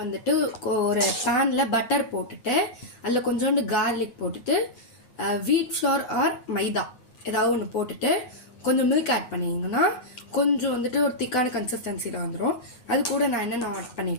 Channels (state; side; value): late; right; 9.4 ms